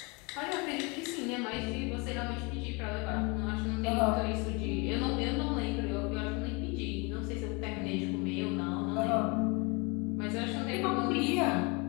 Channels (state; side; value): quieter; right; 29.4 dB